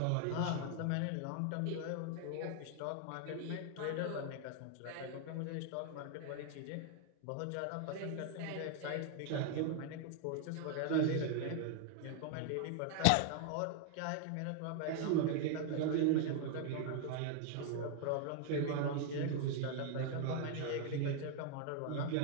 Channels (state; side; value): different; both; correlation 0.00